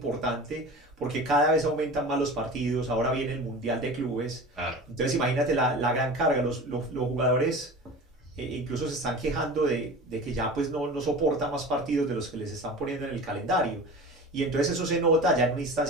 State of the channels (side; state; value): both; normal; correlation 0.35